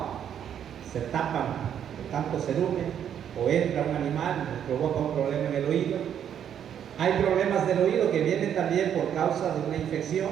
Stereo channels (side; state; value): left; quieter; 9.2 dB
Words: Se tapan de tanto cerumen. o entra un animal y nos provoca un problema en el oído. Hay problemas del oído que vienen también por causa de una infección.